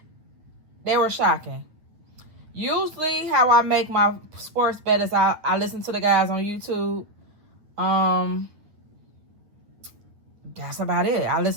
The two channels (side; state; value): left; late; 9.1 ms